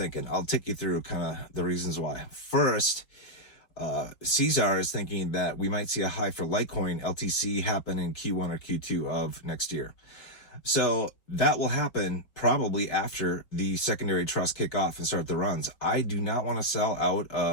I'll take you through kind of the reasons why. First, Caesar is thinking that we might see a high for Litecoin LTC happen in Q1 or Q2 of next year. So that will happen probably after the secondary trust kick off and start the runs. I do not want to sell out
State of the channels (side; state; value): right; late; 4.5 ms